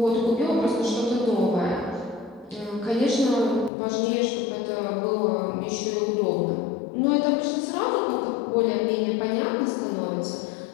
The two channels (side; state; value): right; drops out; at 3.7 s